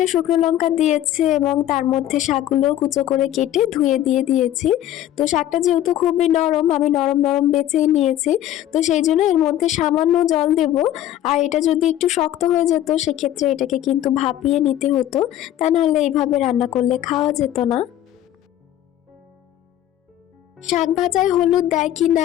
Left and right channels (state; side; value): quieter; right; 12.4 dB